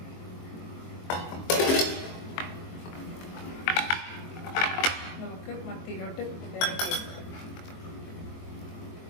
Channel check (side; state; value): right; late; 22 ms